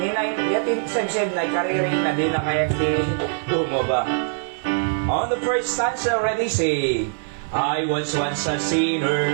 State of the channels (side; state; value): left; silent; digital silence